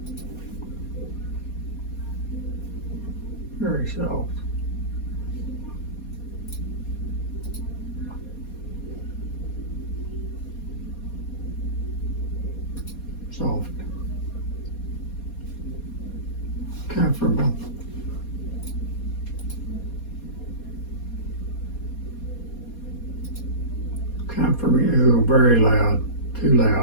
Very soft. Soft. Comfortable. Comfortable. Ooh, very loud. Too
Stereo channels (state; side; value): late; right; 4.2 ms